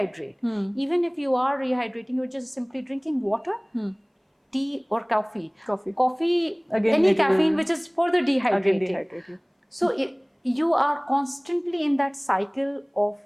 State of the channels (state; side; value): identical; both; correlation 1.00